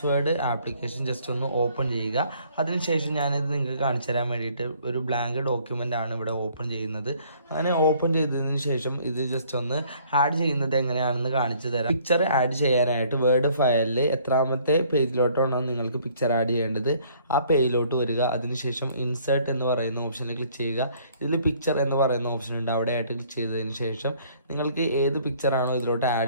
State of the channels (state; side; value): inverted; both; correlation -0.60